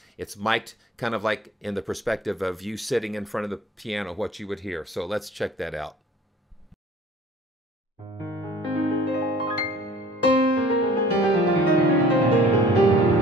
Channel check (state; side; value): normal; both; correlation 0.49